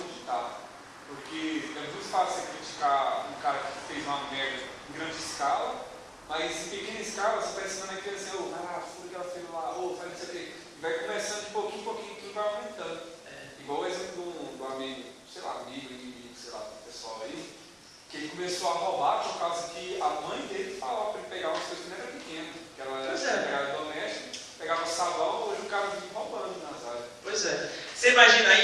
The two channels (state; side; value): identical; both; correlation 1.00